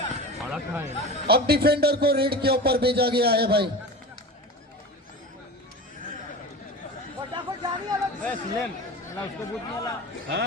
अब डिफेंडर को रेड के ऊपर भेजा गया है भाई।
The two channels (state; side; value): normal; both; correlation 0.31